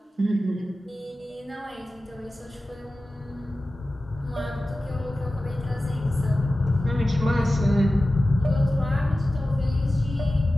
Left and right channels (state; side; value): normal; both; correlation 0.95